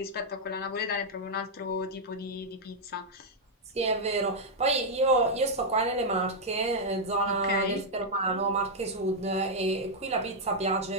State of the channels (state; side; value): normal; both; correlation -0.03